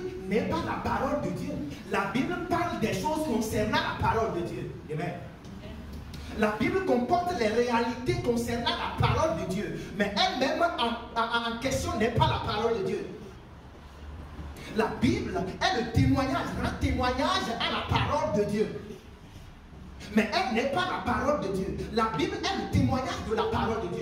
n'est pas la parole de Dieu. La Bible parle des choses concernant la parole de Dieu. Amen. La Bible comporte les réalités concernant la parole de Dieu. Mais elle-même en question n'est pas la parole de Dieu. La Bible est le témoignage, rend témoignage à la parole de Dieu. Mais elle n'est pas la parole de Dieu. La Bible est le témoignage de la parole de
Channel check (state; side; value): identical; both; correlation 1.00